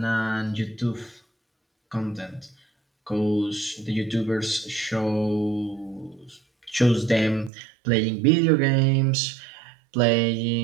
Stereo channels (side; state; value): left; drops out; at 7.5 s